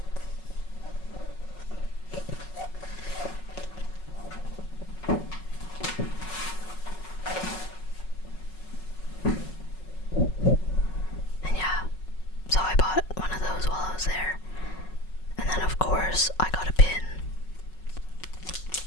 And yeah, so I bought one of those while I was there. And then of course I got a pin.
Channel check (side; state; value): right; late; 5.4 ms